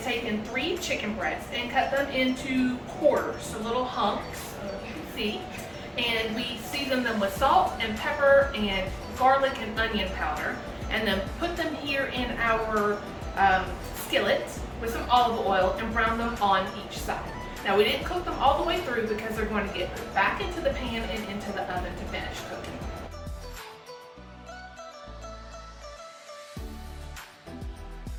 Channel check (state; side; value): identical; both; correlation 1.00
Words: taken 3 chicken breasts and cut them into quarters, so little hunks, you can see. And we season them with salt and pepper and garlic and onion powder, and then put them here in our skillet with some olive oil and brown them on each side. Now we didn't cook them all the way through because they're going to get back into the pan and into the oven to finish cooking.